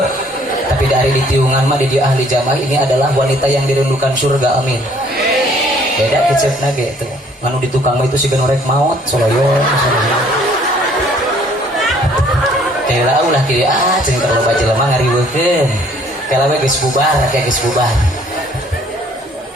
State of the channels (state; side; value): normal; both; correlation 0.60